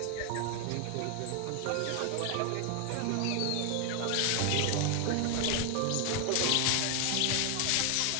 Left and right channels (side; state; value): both; different; correlation 0.00